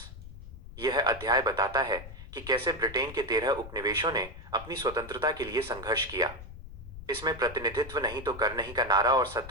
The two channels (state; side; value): noise; left; rumble, 14 dB below the sound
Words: यह अध्याय बताता है कि कैसे ब्रिटेन के 13 उपनिवेशों ने अपनी स्वतंत्रता के लिए संघर्ष किया। इसमें प्रतिनिधित्व नहीं तो कर नहीं का नारा और